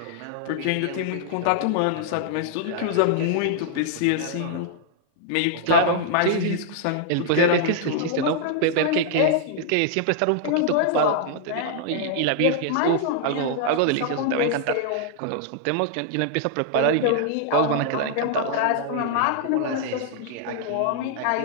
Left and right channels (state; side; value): different; both; correlation -0.01